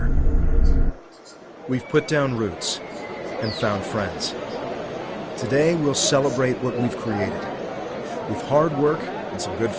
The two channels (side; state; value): both; identical; correlation 1.00